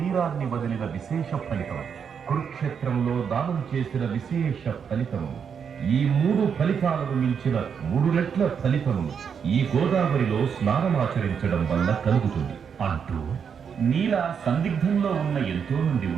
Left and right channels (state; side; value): quieter; left; 7.0 dB